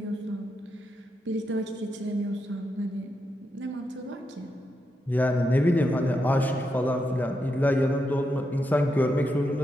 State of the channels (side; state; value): both; normal; correlation 0.84